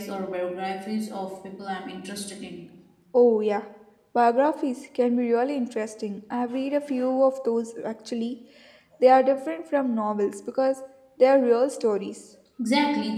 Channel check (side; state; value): both; identical; correlation 1.00